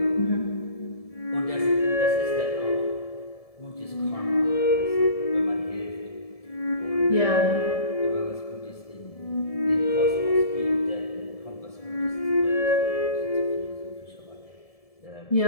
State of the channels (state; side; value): late; right; 1.7 ms